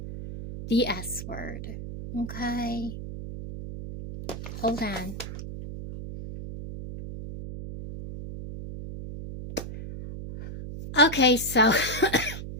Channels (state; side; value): noise; right; hum, 9 dB below the sound